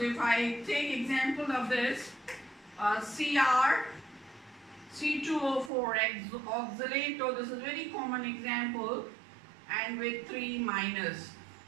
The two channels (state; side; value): drops out; left; at 5.7 s